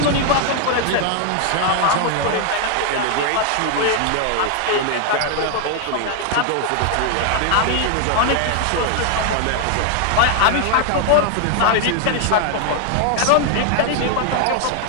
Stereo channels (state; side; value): different; both; correlation 0.00